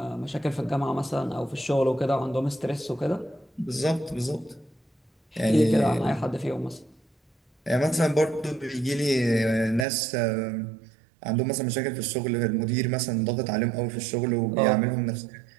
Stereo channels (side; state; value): left; drops out; at 9.9 s